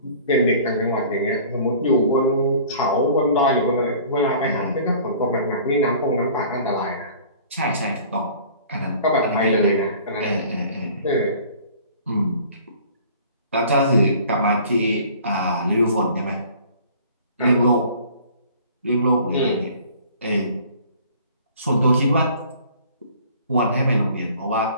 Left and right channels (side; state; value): both; inverted; correlation -0.49